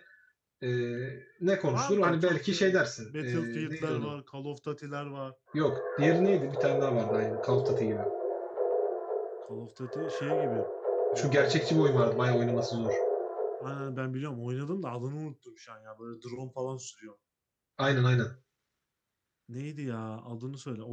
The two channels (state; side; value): identical; both; correlation 1.00